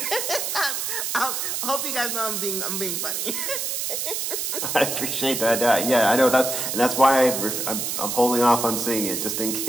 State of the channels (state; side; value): noise; right; hiss, 2 dB below the sound